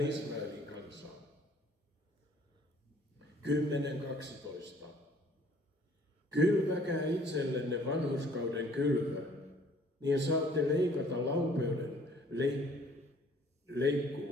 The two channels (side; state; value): both; normal; correlation 0.57